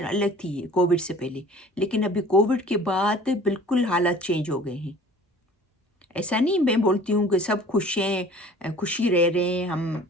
अलग थी कोविड से पहले, लेकिन अभी कोविड के बाद बिल्कुल हालात चेंज हो गए हैं। ऐसा नहीं मैं बोलती हूँ कि सब खुश हैं, खुशी रह रहे हैं हम।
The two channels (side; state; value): both; normal; correlation 0.47